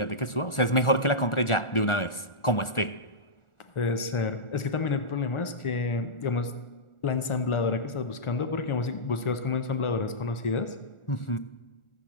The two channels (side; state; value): right; late; 1.4 ms